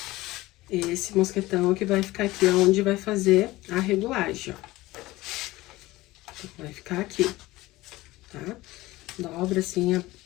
Esse mosquetão que vai ficar aqui, onde vai fazer a regulagem, ó. Vai ficar aqui, tá? Dobra assim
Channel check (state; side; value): quieter; right; 18.8 dB